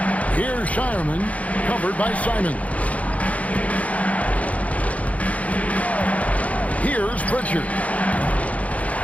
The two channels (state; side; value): late; right; 0.068 ms